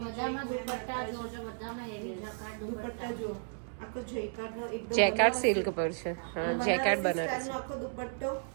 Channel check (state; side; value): silent; left; digital silence